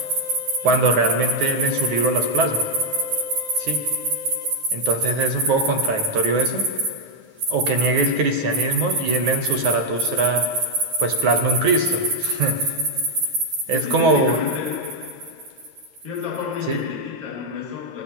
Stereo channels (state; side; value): late; left; 9.5 ms